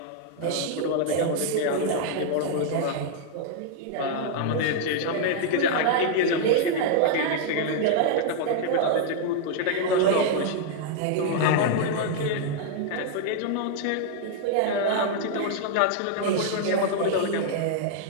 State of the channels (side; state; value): both; different; correlation -0.01